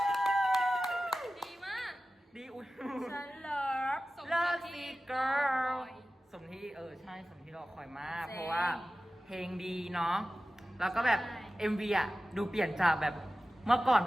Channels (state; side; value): normal; both; correlation 0.95